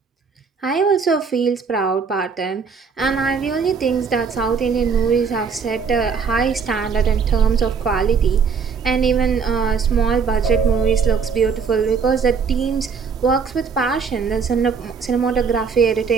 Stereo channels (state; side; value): quieter; left; 5.7 dB